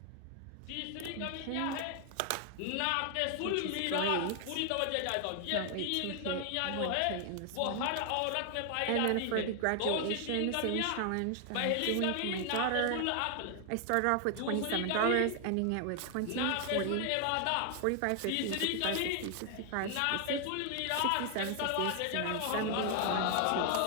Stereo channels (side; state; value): both; different; correlation 0.00